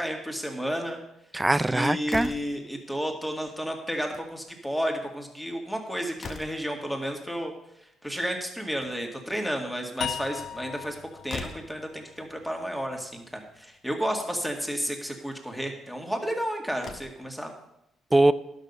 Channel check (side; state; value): both; normal; correlation 0.94